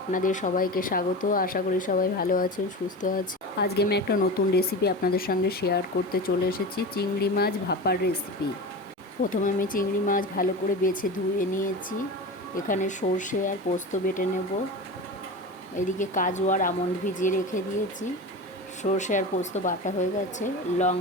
আপনাদের সবাইকে স্বাগত। আশা করি সবাই ভালো আছেন, সুস্থ আছেন। আজকে আমি একটা নতুন রেসিপি আপনাদের সঙ্গে শেয়ার করতে চলে এসেছি, চিংড়ি মাছ ভাপার রেসিপি। প্রথমে আমি চিংড়ি মাছ ভালো করে বেছে ধুয়ে নিয়েছি। এখানে সর্ষে আর পোস্ত বেটে নেব। এদিকে কাজু আর আমন্ড ভিজিয়ে রেখে দিয়েছি। সর্ষে আর পোস্ত বাটা হয়ে গেছে।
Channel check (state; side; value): normal; both; correlation 0.28